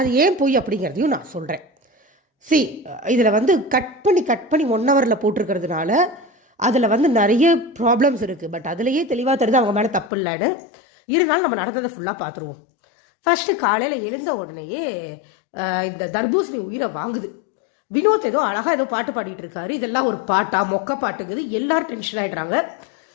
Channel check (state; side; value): drops out; right; at 10.1 s